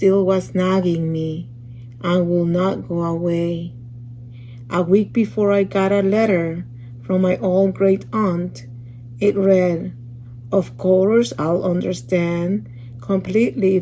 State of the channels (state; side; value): identical; both; correlation 1.00